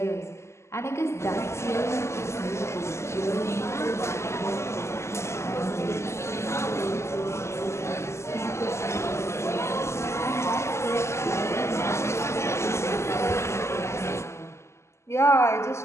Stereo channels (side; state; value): right; late; 0.13 ms